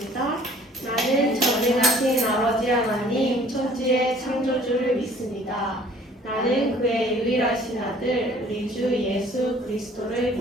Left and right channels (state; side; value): normal; both; correlation 0.54